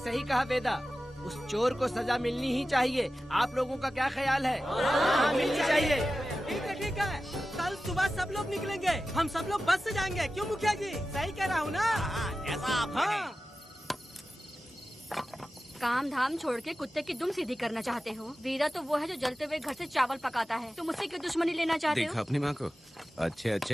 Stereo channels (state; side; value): normal; both; correlation 0.94